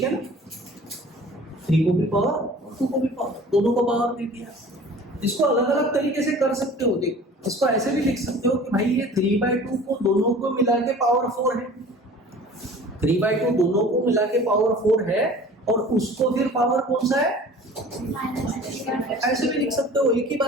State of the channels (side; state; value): both; normal; correlation 0.44